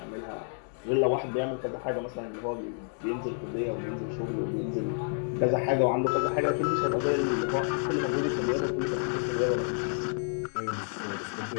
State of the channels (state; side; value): silent; right; 58 dB below the other